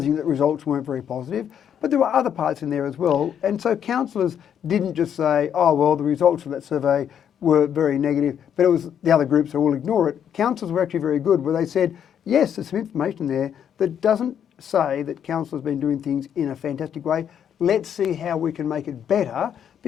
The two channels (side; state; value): right; quieter; 8.9 dB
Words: that results weren't very positive, but there were other parts in there as well. And so councillors didn't just say, oh, well, the results of that survey were very negative, but it was the other groups who will ignore it. Councillors were actually very good, where they said, yes, there's some information there that doesn't say that council has been doing things in a fantastic way. Let's see how we can make it better,